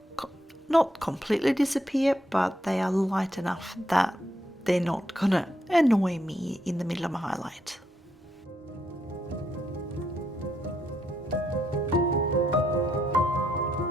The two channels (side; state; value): both; normal; correlation 0.78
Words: not completely disappear, but they are light enough that they're not gonna annoy me in the middle of my highlight.